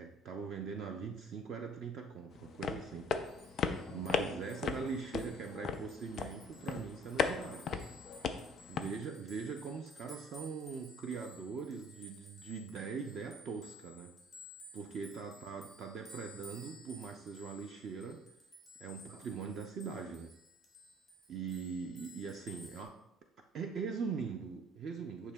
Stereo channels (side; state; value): both; normal; correlation 0.53